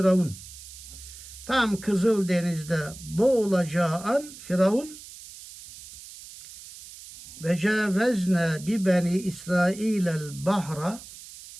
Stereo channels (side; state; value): right; noise; hiss, 16 dB below the sound